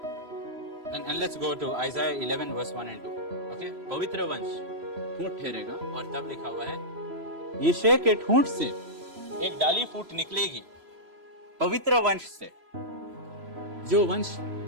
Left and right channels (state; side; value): late; left; 3.0 ms